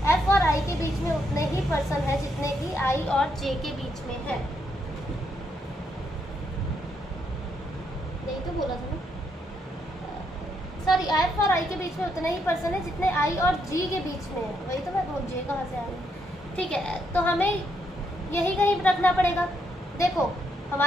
एफ और आई के बीच में उतने ही पर्सन है जितने की आई और जे के बीच में है। यही तो बोला था ना, सॉरी, एफ और आई के बीच में उतने ही पर्सन है जितने आई और जी के बीच में है। वही तो मैं बोल, जे कहाँ से आ रही। ठीक है, तो हमें यही कहीं रखना पड़ेगा। देखो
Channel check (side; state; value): both; normal; correlation 0.76